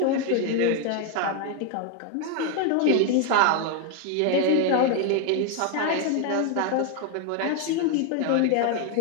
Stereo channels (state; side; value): different; both; correlation 0.01